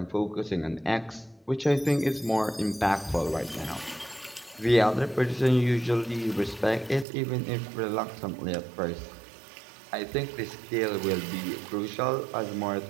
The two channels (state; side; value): drops out; left; at 7.1 s